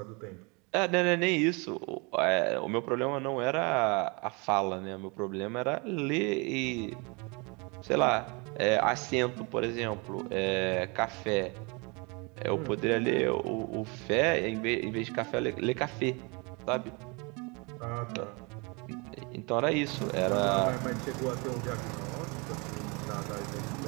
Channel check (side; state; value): left; quieter; 30.0 dB